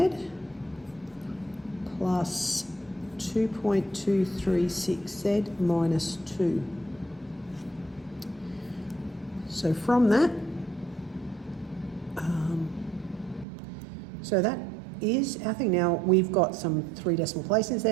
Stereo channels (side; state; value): left; drops out; at 13.5 s